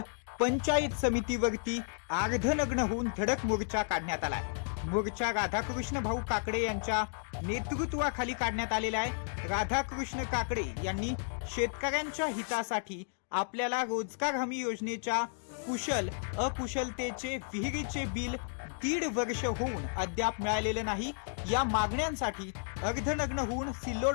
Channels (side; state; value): right; silent; digital silence